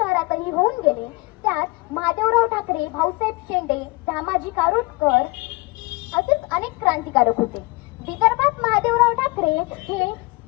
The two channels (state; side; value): quieter; right; 25.0 dB